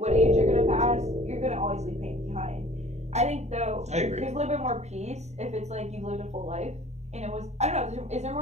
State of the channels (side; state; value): left; late; 0.32 ms